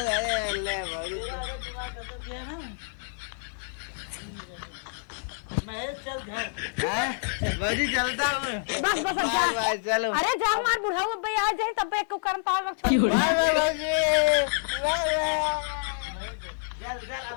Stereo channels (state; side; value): silent; right; 60 dB below the other